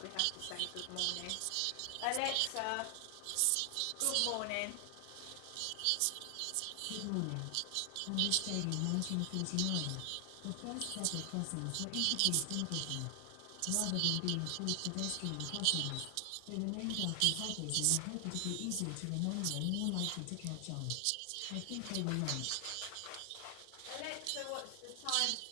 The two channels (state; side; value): different; both; correlation 0.00